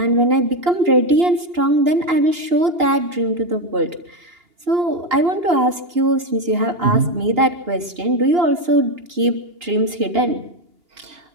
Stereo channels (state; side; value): late; left; 2.8 ms